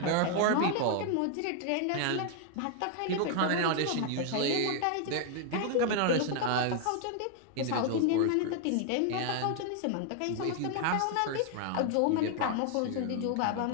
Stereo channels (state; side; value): different; both; correlation 0.00